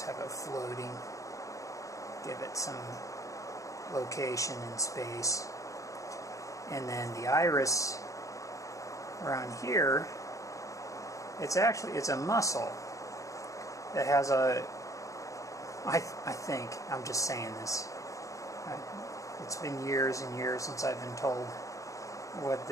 have it floating. Give it some location and space. And then the iris around here, it's a muscle that has a, I think, I'm just saying this, it's been years and years since I've been told what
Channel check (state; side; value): late; right; 0.16 ms